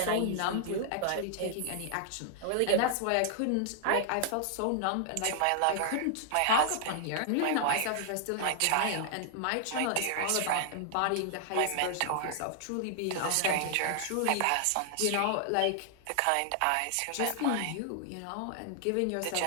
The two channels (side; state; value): both; different; correlation 0.00